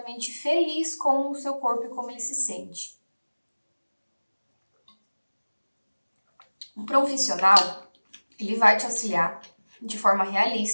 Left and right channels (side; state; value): both; inverted; correlation -1.00